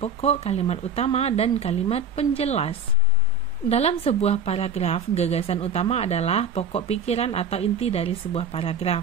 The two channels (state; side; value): quieter; left; 3.7 dB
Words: kalimat utama, dan kalimat penjelas. Dalam sebuah paragraf, gagasan utama adalah pokok pikiran atau inti dari sebuah